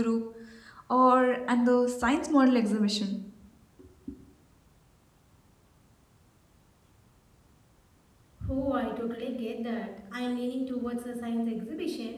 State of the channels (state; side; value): identical; both; correlation 1.00